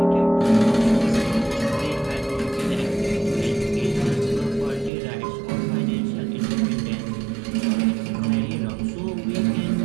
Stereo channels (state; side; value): drops out; left; at 4.9 s